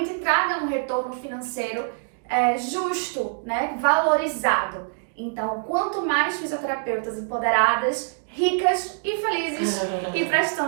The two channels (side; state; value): left; silent; digital silence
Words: te traga um retorno financeiro justo, né? Valorizado. Então, quanto mais fisioterapeutas empoderadas, ricas e felizes e